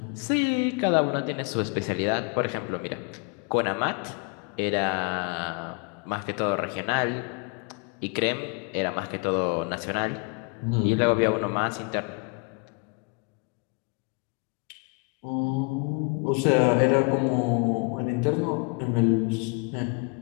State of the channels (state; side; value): quieter; right; 33.2 dB